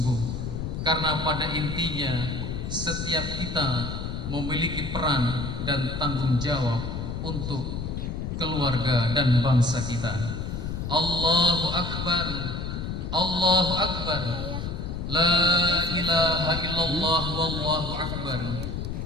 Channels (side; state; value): left; noise; rumble, 4 dB below the sound